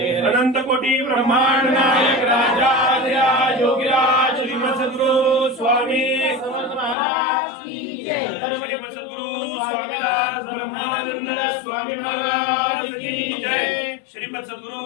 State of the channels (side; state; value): right; drops out; at 7.0 s